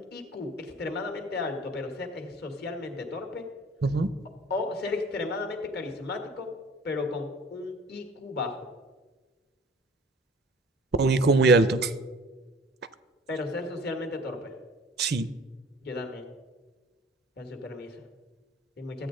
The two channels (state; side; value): normal; both; correlation 0.49